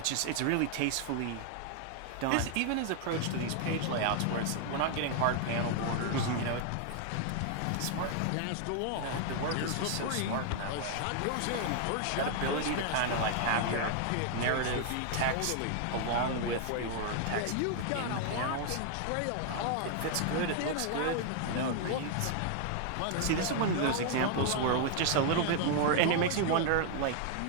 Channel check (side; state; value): both; different; correlation 0.00